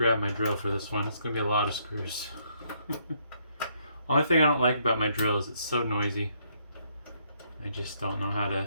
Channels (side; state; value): both; inverted; correlation -0.71